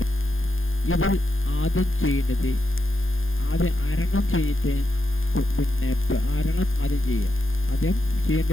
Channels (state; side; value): late; right; 0.59 ms